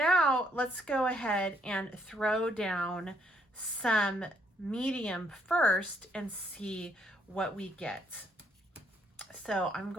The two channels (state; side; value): normal; both; correlation 0.70